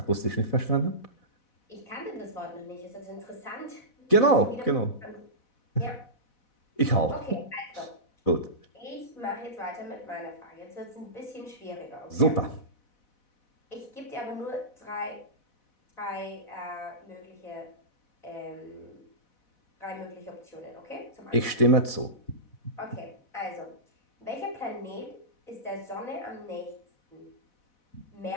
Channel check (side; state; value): right; late; 4.1 ms